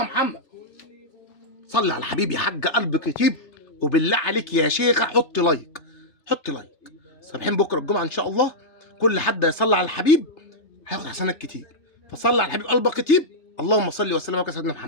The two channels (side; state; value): right; late; 3.3 ms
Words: محمد. صلي على الحبيب يا حاجه، قلبك يطيب. وبالله عليك يا شيخه حطي لايك، حطي لايك. صابحين بكره الجمعه ان شاء الله، كل حد يصلي على الحبيب هياخد حسنات كتير. فصلي على الحبيب قلبك يطيب. اللهم صل وسلم وبارك على سيدنا